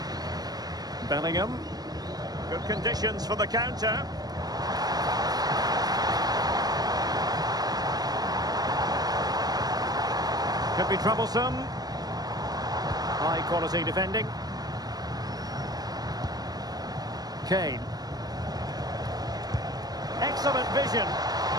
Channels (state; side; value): late; left; 0.19 ms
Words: Bellingham. Good conditions for the counter. Could be troublesome. High quality defending. Kane. Excellent vision.